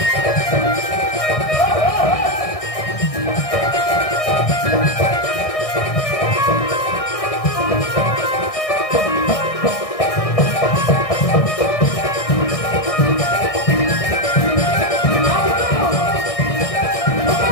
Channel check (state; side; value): late; right; 1.6 ms